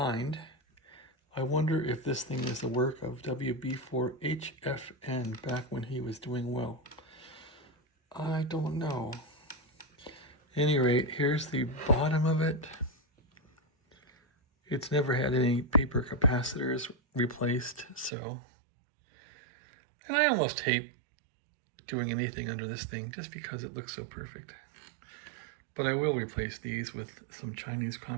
I wonder if this thing is the work of WB4HFN back when he was doing well. I don't know. At any rate, here's the bottom of it. It's never had any paper capacitors replaced, so. And I almost hate doing anything under this thing just because it looks so perfect. But I will replace these with some Chinese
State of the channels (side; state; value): left; drops out; at 18.1 s